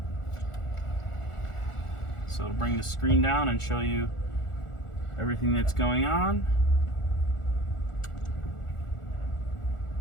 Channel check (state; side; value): late; right; 1.4 ms